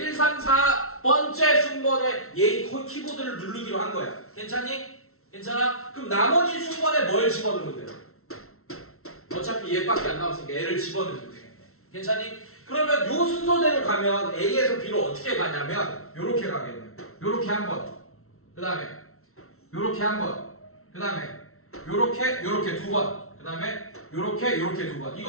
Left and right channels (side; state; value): right; late; 0.63 ms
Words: 3, 4번째 순번에 얘 키보드를 누르기로 한 거야. 괜찮니? 괜찮아? 그럼 나머지 순번에 뭘 집어넣으면 돼요? 어차피 얘밖에 안 남았으니까 얘를 집어넣으면 되겠네. 괜찮니? 그러면 요 순서대로 가면 A에서 B로 어떻게 가냐면 요렇게 가겠네요. 요렇게 한 번. 그 다음에 요렇게 한 번. 그 다음에 요렇게 두 번. 그 다음에 요렇게 두 번.